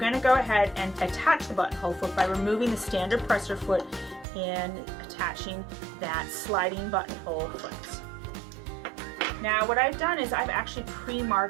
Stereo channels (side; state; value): left; drops out; at 4.2 s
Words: to go ahead and attach the buttonhole foot by removing the standard presser foot and attaching that sliding buttonhole foot. Now what I've done is I've actually